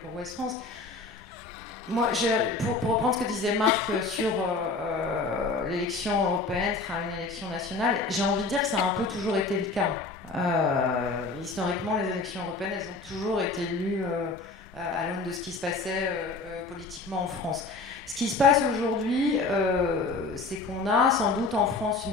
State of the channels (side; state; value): right; quieter; 3.7 dB